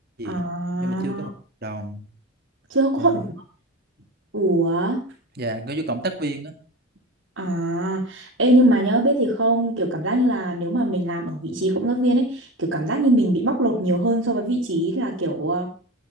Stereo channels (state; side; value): normal; both; correlation 0.28